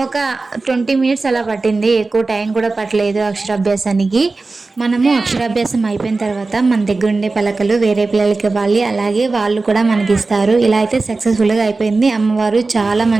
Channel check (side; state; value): left; quieter; 3.7 dB